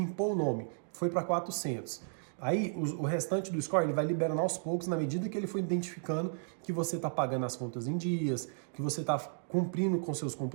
o nome, foi para 400. Aí o restante do score ele vai liberando aos poucos na medida que ele for identificando que você está pagando as contas em dias, que você está cumprindo com seus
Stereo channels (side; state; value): left; silent; digital silence